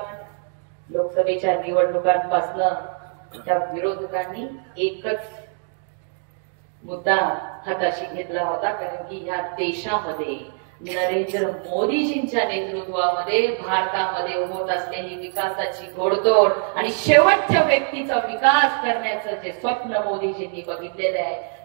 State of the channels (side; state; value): left; silent; 57 dB below the other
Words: निवडणुकांपासून त्या विरोधकांनी एकच मुद्दा हाताशी घेतला होता. कारण की ह्या देशामध्ये नरेंद्र मोदीजींच्या नेतृत्वामध्ये भारतामध्ये होत असलेली विकासाची घोडदौड आणि शेवटच्या व्यक्तीचा विकास करण्याचं जे स्वप्न मोदीजींनी बघितलेलं आहे